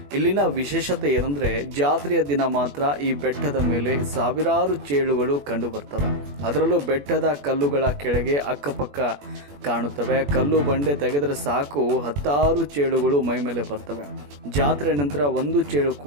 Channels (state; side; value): late; left; 21 ms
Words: ಇಲ್ಲಿನ ವಿಶೇಷತೆ ಏನಂದ್ರೆ, ಜಾತ್ರೆಯ ದಿನ ಮಾತ್ರ ಈ ಬೆಟ್ಟದ ಮೇಲೆ ಸಾವಿರಾರು ಚೇಳುಗಳು ಕಂಡು ಬರ್ತವೆ. ಅದರಲ್ಲೂ ಬೆಟ್ಟದ ಕಲ್ಲುಗಳ ಕೆಳಗೆ ಅಕ್ಕಪಕ್ಕ ಕಾಣುತ್ತವೆ. ಕಲ್ಲು ಬಂಡೆ ತೆಗೆದರೆ ಸಾಕು 10 ಚೇಳುಗಳು ಮೈ ಮೇಲೆ ಬರ್ತವೆ. ಜಾತ್ರೆ ನಂತರ ಒಂದು ಚೇಳು